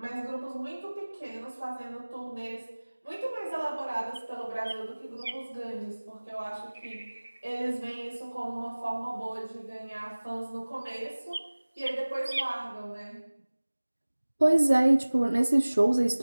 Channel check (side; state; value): both; inverted; correlation -1.00